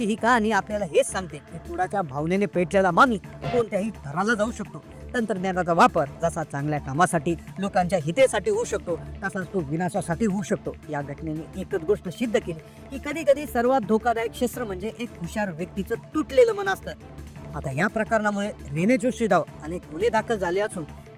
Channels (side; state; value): both; identical; correlation 1.00